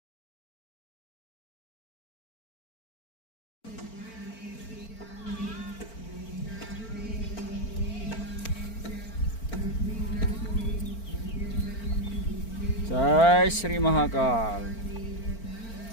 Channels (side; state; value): right; late; 4.4 ms